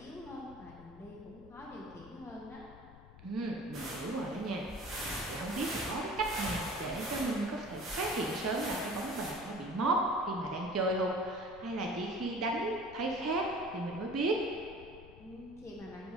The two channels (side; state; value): left; noise; rumble, 18 dB below the sound